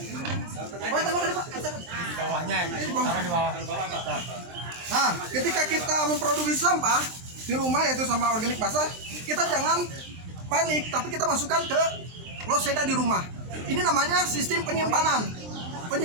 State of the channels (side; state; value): left; late; 23 ms